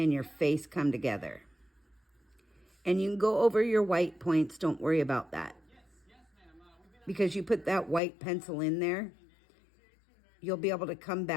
your face come together. And you can go over your white points. Don't worry about that. Because you put that white pencil in there, you'll be able to come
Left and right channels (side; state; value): right; drops out; at 8.0 s